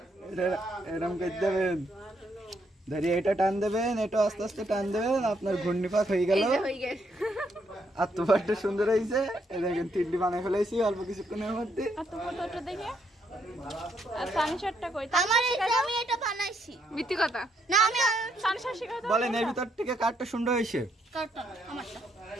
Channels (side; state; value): both; normal; correlation 0.74